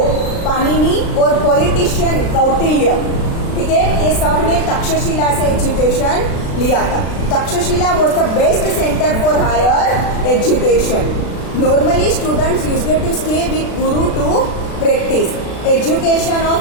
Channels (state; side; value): late; right; 36 ms